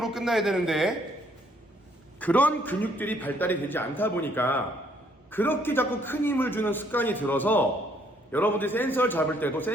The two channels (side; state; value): both; normal; correlation 0.66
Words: 끝나야 되는데 그런 근육들이 발달이 되지 않다 보니까 그렇게 자꾸 큰 힘을 주는 습관이 들어서 여러분들이 센서를 잡을 때도